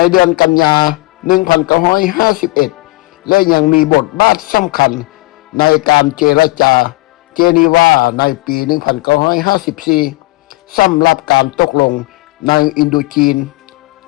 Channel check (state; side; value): quieter; right; 21.2 dB